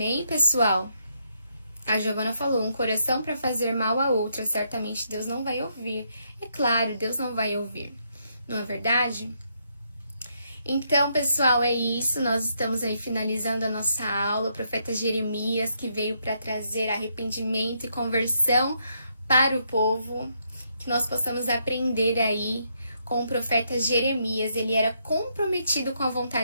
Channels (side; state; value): both; inverted; correlation -0.76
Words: pessoal? A Giovana falou, um coração para fazer mal a outra, certamente Deus não vai ouvir. É claro, Deus não vai ouvir. Não é verdade? Então, pessoal, é isso. Nós estamos aí finalizando a nossa aula. O profeta Jeremias, que veio para trazer arrependimento e conversão para o povo. Que nós possamos aprender aí com o profeta Jeremias. Ele era comprometido com a